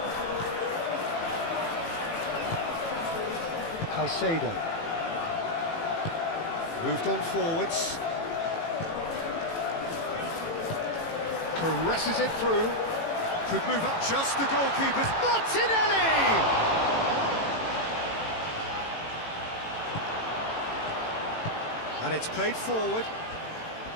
Caicedo. Moved on forwards. Caresses it through. Could move up just the goalkeeper's. Martinelli! And it's played forward.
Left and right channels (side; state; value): right; late; 18 ms